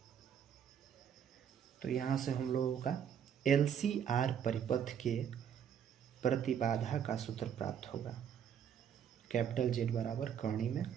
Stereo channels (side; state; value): left; quieter; 8.5 dB